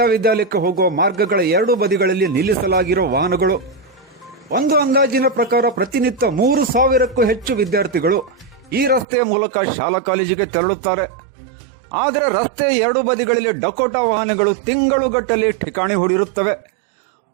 ವಿದ್ಯಾಲಯಕ್ಕೆ ಹೋಗುವ ಮಾರ್ಗಗಳ ಎರಡೂ ಬದಿಗಳಲ್ಲಿ ನಿಲ್ಲಿಸಲಾಗಿರುವ ವಾಹನಗಳು. ಒಂದು ಅಂದಾಜಿನ ಪ್ರಕಾರ ಪ್ರತಿನಿತ್ಯ 3,000ಕ್ಕೂ ಹೆಚ್ಚು ವಿದ್ಯಾರ್ಥಿಗಳು ಈ ರಸ್ತೆಯ ಮೂಲಕ ಶಾಲಾ ಕಾಲೇಜಿಗೆ ತೆರಳುತ್ತಾರೆ. ಆದರೆ ರಸ್ತೆಯ ಎರಡೂ ಬದಿಗಳಲ್ಲಿ ಡಕೋಟಾ ವಾಹನಗಳು ತಿಂಗಳುಗಟ್ಟಲೆ ಠಿಕಾಣಿ ಹೂಡಿರುತ್ತವೆ.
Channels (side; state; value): left; drops out; at 9.1 s